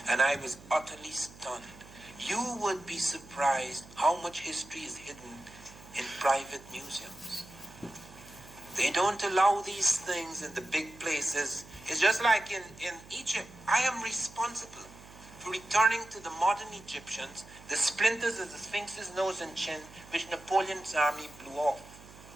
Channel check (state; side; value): noise; right; hum, 20 dB below the sound